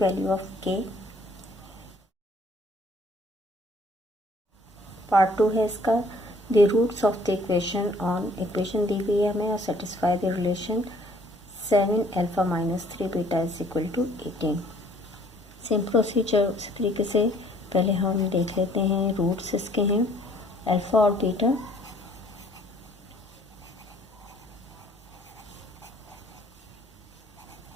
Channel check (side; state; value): both; normal; correlation 0.59